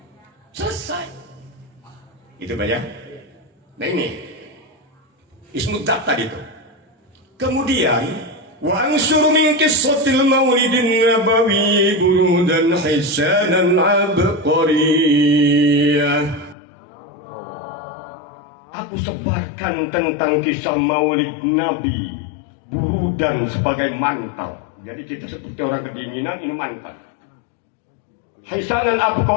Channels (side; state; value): right; drops out; at 16.6 s